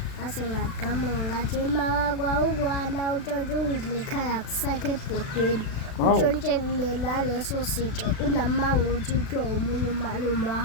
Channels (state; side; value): late; right; 36 ms